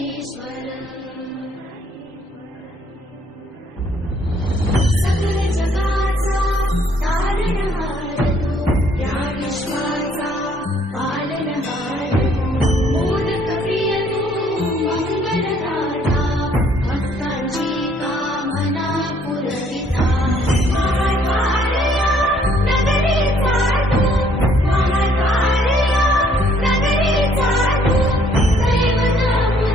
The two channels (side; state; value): both; normal; correlation 0.64